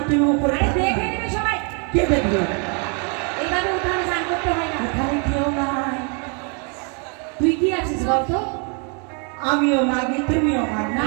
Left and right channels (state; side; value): quieter; left; 37.2 dB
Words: তুমি উপরে আরে থাকো। দেখে নেবে সবাই। কে দেখবে? এইভাবে উঠানে স্নান করতে হয় না। এখানে কেউ নাই। তুই কি আছিস বলতো? আমিও মাগি, তুমিও মাগি।